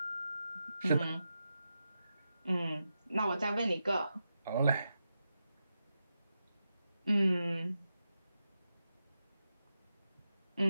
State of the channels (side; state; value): both; inverted; correlation -0.89